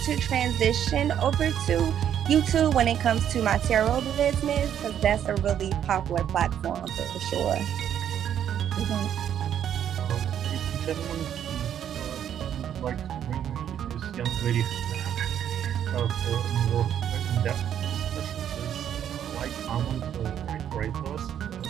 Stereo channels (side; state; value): left; quieter; 9.7 dB